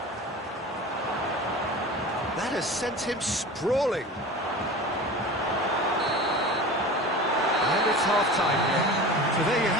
That has sent him sprawling. And it's half-time here. So there you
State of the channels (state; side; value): normal; both; correlation 0.34